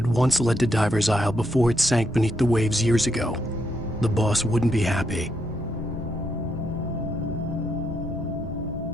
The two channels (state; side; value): noise; left; hum, 18 dB below the sound